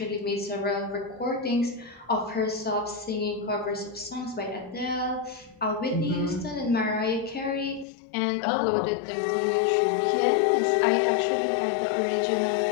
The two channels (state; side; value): drops out; right; at 7.9 s